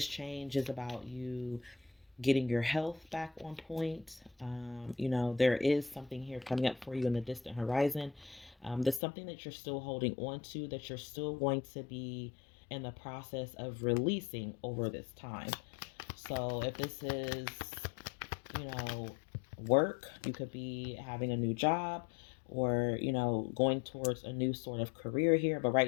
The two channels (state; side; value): drops out; right; at 9.0 s